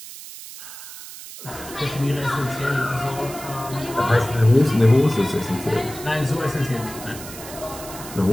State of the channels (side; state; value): right; noise; hiss, 13 dB below the sound